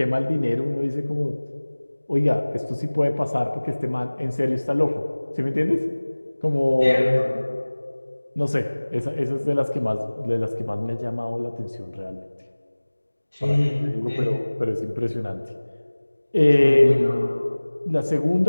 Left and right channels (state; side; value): inverted; both; correlation -1.00